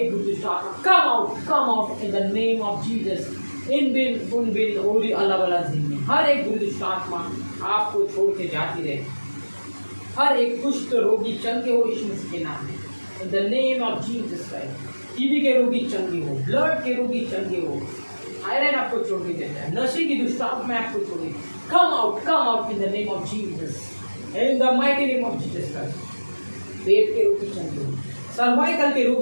बुरी दुष्ट आत्मा come out in the name of Jesus. इन बिन उन बिन ओरी अल्लाह वाला जिंदगी, हर एक बुरी दुष्ट आत्मा आपको छोड़ के जाती रहे। हर एक कुष्ठ रोगी चंगे हो यीशु मसीह के नाम में। In the name of Jesus Christ. TB के रोगी चंगे हो, ब्लड के रोगी चंगे हो, थायराइड आपको छोड़ के देता है, नशे की दुष्ट आत्मा आपको छोड़ के come out in the name of Jesus. In the mighty name of Jesus Christ. पेट के रोगी चंगे हो, सर्वाइकल के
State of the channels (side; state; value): both; inverted; correlation -1.00